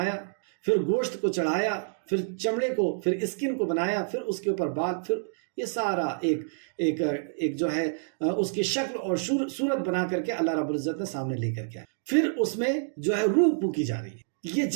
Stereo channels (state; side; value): silent; left; digital silence